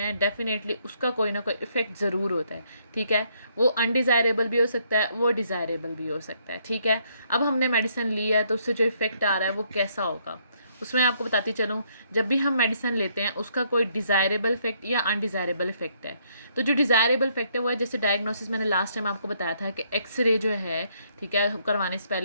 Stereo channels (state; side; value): inverted; both; correlation -0.70